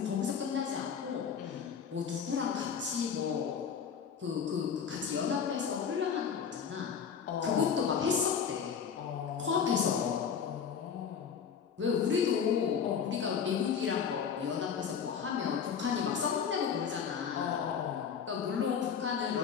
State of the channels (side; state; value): right; quieter; 7.1 dB